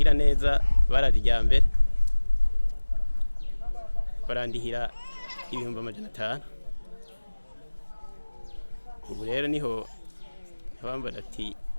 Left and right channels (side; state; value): both; inverted; correlation -1.00